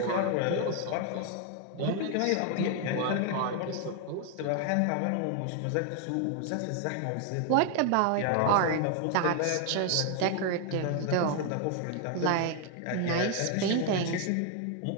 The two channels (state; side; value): different; both; correlation 0.00